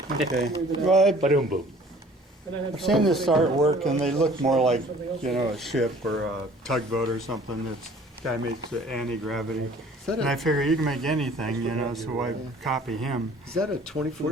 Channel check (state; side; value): normal; both; correlation 0.52